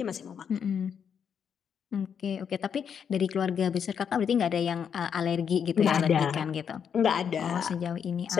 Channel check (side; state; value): right; quieter; 7.5 dB